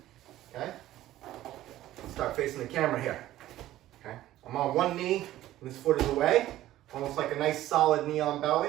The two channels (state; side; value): quieter; left; 14.4 dB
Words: okay? Start facing the camera here, okay? I'm on one knee and this foot is away, almost like a nice solid knee on